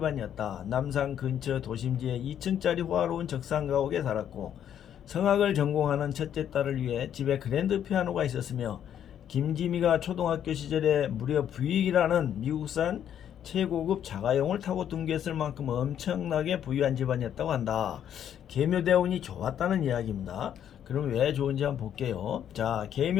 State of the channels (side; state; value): right; quieter; 9.7 dB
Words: 남산 근처 도심지에 2층짜리 호화로운 적상가옥에 살았고 성악을 전공하는 첫째 딸을 위해 집에 그랜드 피아노가 있었으며 김지미가 초등학교 시절에 무려 부익이라는 미국산 최고급 자가용을 타고 등교했을 만큼 엄청나게 부유한 집안이었다고 한다. 계묘대운이 좋았다는 이야기입니다. 그럼 왜 좋은지 한번 볼게요. 자,